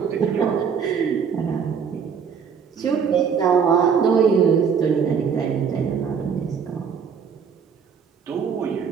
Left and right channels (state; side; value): quieter; left; 6.7 dB